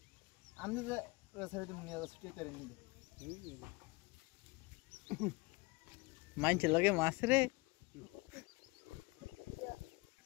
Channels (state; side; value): quieter; right; 25.1 dB